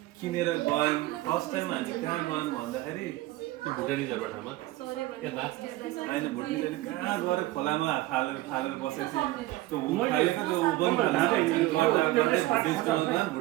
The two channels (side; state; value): left; quieter; 17.5 dB